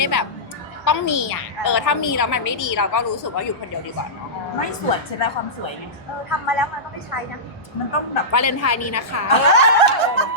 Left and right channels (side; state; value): both; normal; correlation -0.16